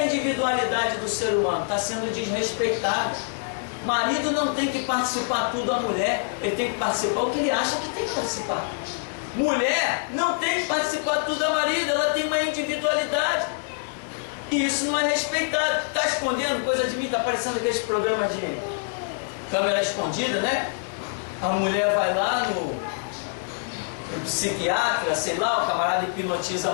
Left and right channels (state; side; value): silent; right; digital silence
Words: individualidade do ser humano está sendo desrespeitada. Marido não tem que participar tudo da mulher, ele tem que participar o que ele acha que tem que participar. Mulher não tem que participar tudo da marido, ela tem uma individualidade. E isso não é respeitado. Está escondendo coisa de mim, está aparecendo aqueles programas de câmera escondida, né? A mulher vai lá no psiquiatra, sei lá, o camarada hipnotiza a